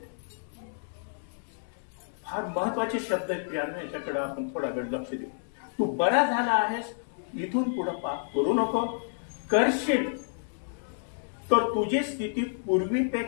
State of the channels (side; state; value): right; silent; 58 dB below the other